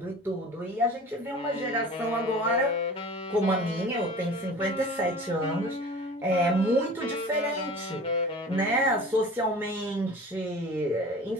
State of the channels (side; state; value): both; normal; correlation 0.40